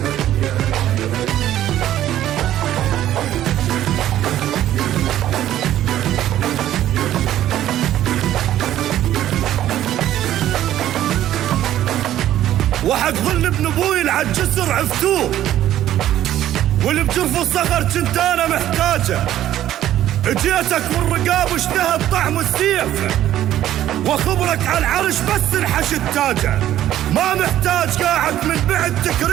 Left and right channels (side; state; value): left; quieter; 12.5 dB